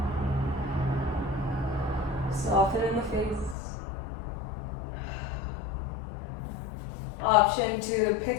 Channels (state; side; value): drops out; right; at 3.6 s